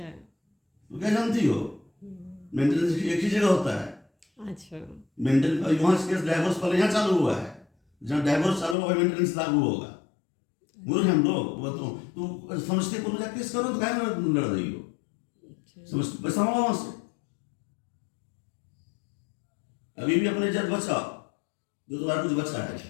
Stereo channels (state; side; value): drops out; right; at 8.8 s